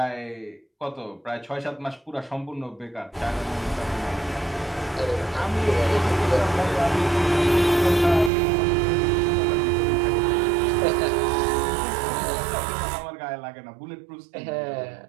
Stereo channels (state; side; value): drops out; left; at 8.3 s